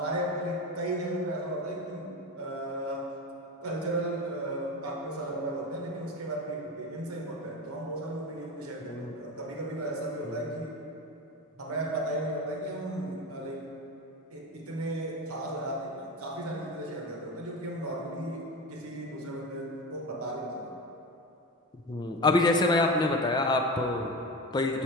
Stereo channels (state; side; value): normal; both; correlation 0.25